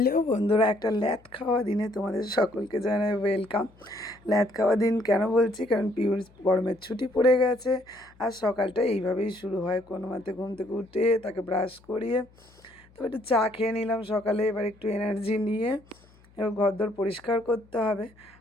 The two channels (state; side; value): noise; left; hum, 28 dB below the sound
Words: বন্ধুরা, একটা ল্যাদ খাওয়া দিনে তোমাদের সকলকে জানাই ওয়েলকাম। ল্যাদ খাওয়া দিন কেন বলছি, কারণ পিউর গরমের ছুটি পড়ে গেছে আর সকালটা এইভাবেই শুরু হয়। কোনো মতে ঘুম থেকে উঠে তাকে ব্রাশ করিয়ে তো একটু চা খেয়ে নিলাম সকালে। এবার একটু এনার্জি নিয়ে এবার ঘরদোর পরিষ্কার করতে হবে।